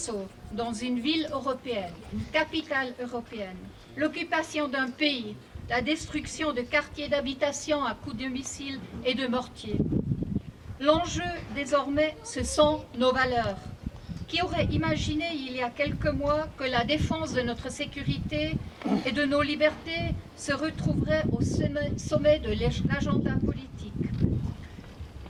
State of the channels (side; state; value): both; identical; correlation 1.00